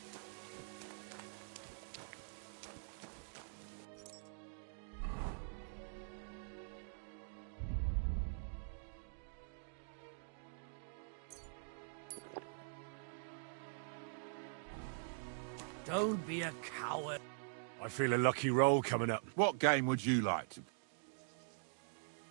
Don't be a coward. I feel a lucky roll coming up. What game would you like to...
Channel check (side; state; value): left; silent; digital silence